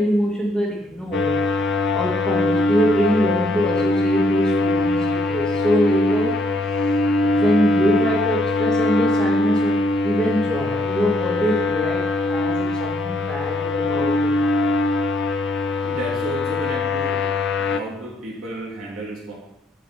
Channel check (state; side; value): normal; both; correlation 0.70